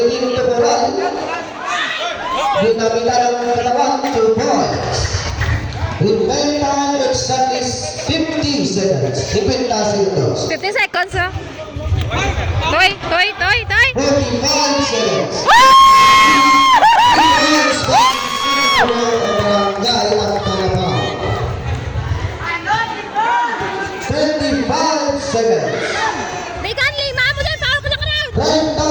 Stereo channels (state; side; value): identical; both; correlation 1.00